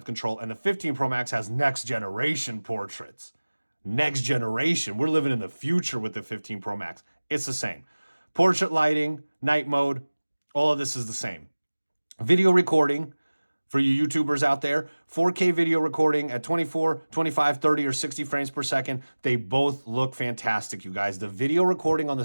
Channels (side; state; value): both; inverted; correlation -1.00